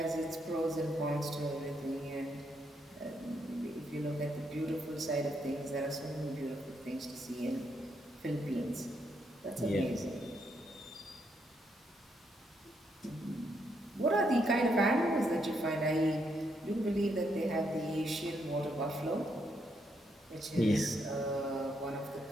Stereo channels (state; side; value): normal; both; correlation 0.77